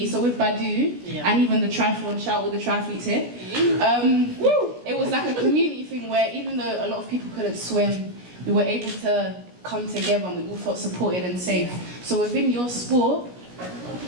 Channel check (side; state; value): left; late; 17 ms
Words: So with BADU and even the triathlon, shout all the triathletes here. It was like a community thing where even though a lot of people couldn't swim, we were able to come together and we all felt supported and safe. So within your sport,